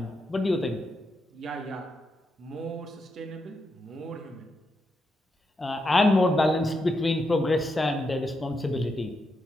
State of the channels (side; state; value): both; normal; correlation 0.83